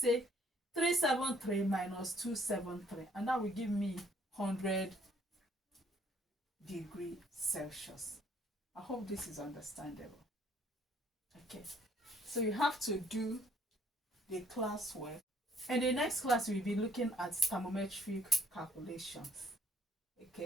373 minus 273, and that will give me 100 degrees Celsius. I hope this is understandable. Okay, so you have to do the classwork. In the next class, we'll be looking at thermometric calculations.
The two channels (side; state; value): both; normal; correlation 0.63